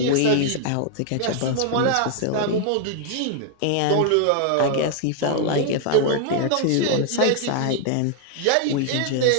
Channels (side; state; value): both; different; correlation 0.00